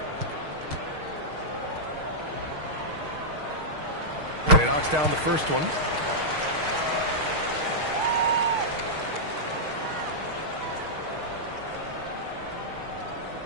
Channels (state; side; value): late; left; 6.5 ms